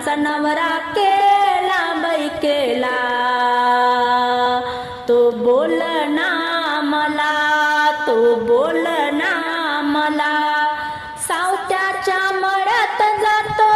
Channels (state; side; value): identical; both; correlation 1.00